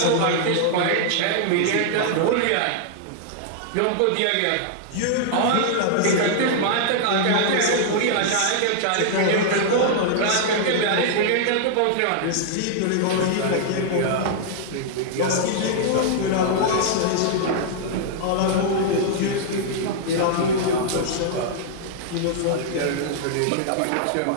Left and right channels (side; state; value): both; different; correlation -0.01